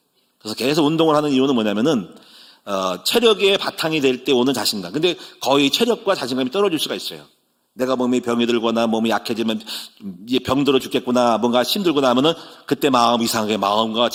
그래서 계속 운동을 하는 이유는 뭐냐면은 체력의 바탕이 될 때 오는 자신감. 근데 거의 체력과 자신감이 떨어질 수가 있어요. 내가 몸이 병이 들거나 몸이 약해지면 이제 병들어 죽겠구나, 뭔가 힘들구나 하면은 그때 마음 이상하게 마음과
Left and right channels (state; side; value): identical; both; correlation 1.00